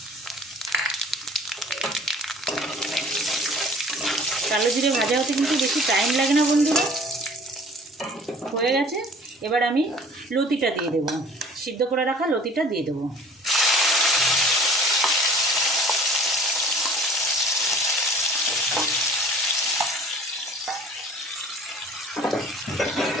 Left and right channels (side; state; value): both; normal; correlation 0.49